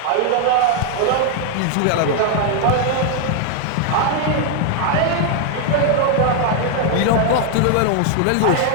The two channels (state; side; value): different; both; correlation 0.00